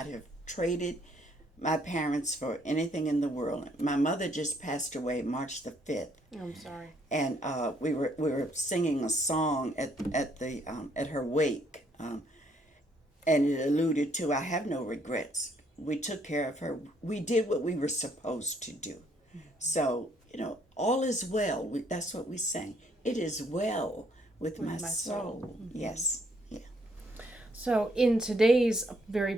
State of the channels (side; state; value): both; normal; correlation 0.68